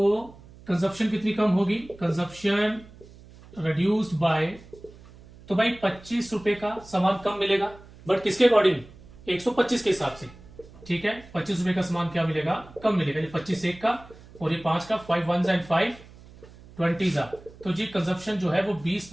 कंजप्शन कितनी कम होगी, कंजप्शन रिड्यूस्ड बाय, तो भाई 25 रुपए का सामान कम मिलेगा, बट किसके अकॉर्डिंग, 125 के हिसाब से। ठीक है, 25 रुपए का सामान क्या मिलेगा, कम मिलेगा, ये 25 एक का और ये 5 का, 5 1s and 5 20s, तो जी कंजप्शन जो है वो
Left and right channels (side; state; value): right; noise; hum, 21 dB below the sound